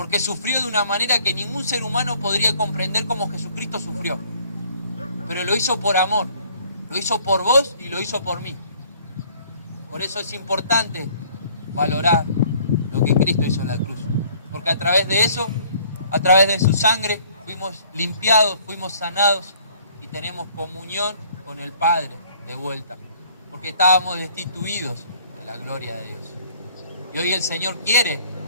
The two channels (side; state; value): both; inverted; correlation -0.58